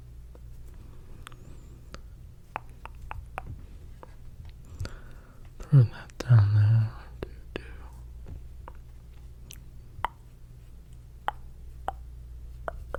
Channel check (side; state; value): both; identical; correlation 1.00